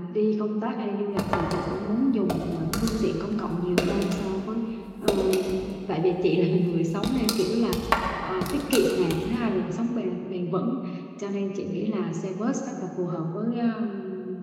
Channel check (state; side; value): identical; both; correlation 1.00